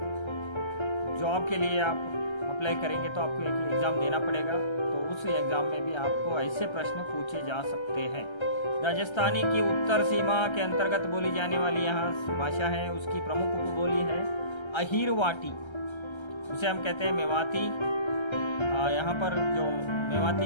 जॉब के लिए आप अप्लाई करेंगे तो आपको एक एग्जाम देना पड़ेगा, तो उस एग्जाम में भी आपको ऐसे प्रश्न पूछे जा सकते हैं। राजस्थानी की उत्तर सीमा के अंतर्गत बोली जाने वाली यहाँ भाषा है, उसकी प्रमुख उपबोली है अहिरवाटी, उसे हम कहते हैं मेवाती। यहाँ पर जो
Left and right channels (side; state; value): right; late; 1.3 ms